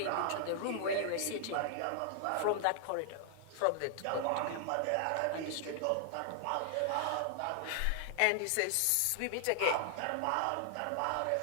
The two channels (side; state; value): both; different; correlation 0.00